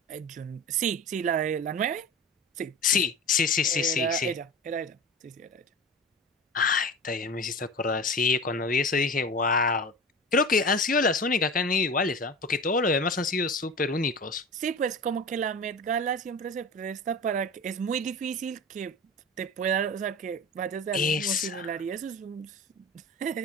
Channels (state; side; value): normal; both; correlation 0.32